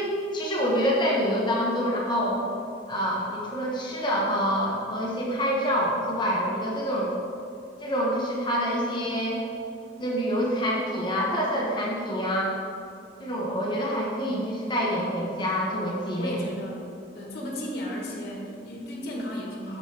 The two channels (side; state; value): both; normal; correlation 0.27